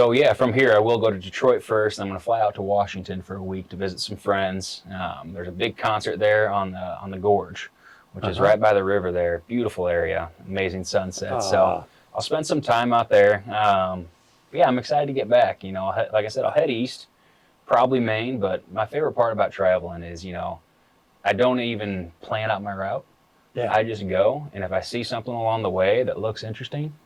yeah, from here I will go to Detroit first. I'm going to fly out to Washington for a week to visit some friends. There's a big concert there on the Gorge, which is right by the river there. Beautiful area, amazing sunset. So I'll spend some time out there. Yeah, I'm excited to get back. Like I said, I'll head east, probably Maine. But my favorite part about traveling is, I don't even plan out my route. Yeah. I just go, and if I see something along the way that looks interesting,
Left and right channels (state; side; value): identical; both; correlation 1.00